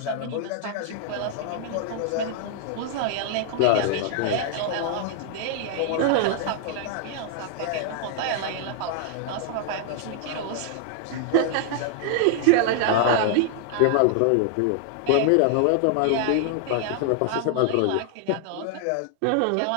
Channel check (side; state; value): both; different; correlation -0.01